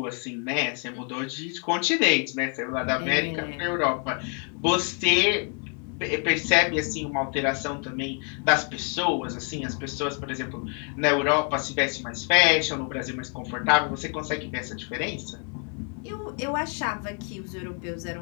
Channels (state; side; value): quieter; right; 39.4 dB